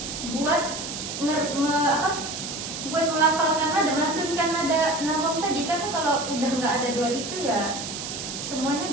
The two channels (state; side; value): noise; right; hiss, 7 dB below the sound